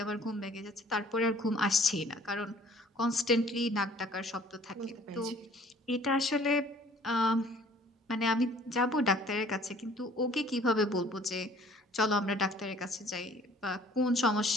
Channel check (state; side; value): normal; both; correlation 0.54